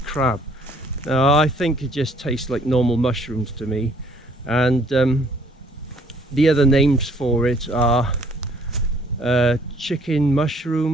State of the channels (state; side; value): normal; both; correlation 0.61